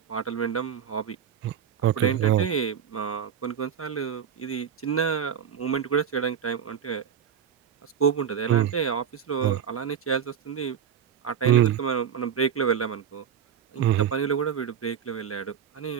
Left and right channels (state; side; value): quieter; left; 8.2 dB